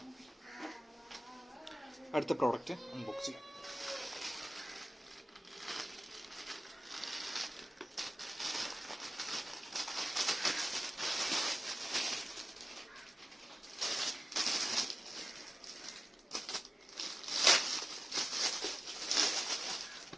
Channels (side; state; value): both; normal; correlation 0.97